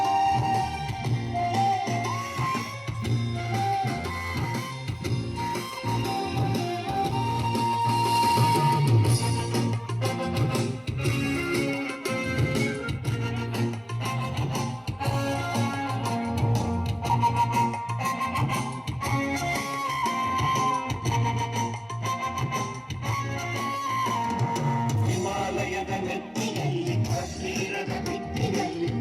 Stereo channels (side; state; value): both; identical; correlation 1.00